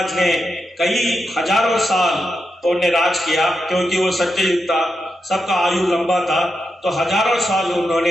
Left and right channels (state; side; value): normal; both; correlation 0.86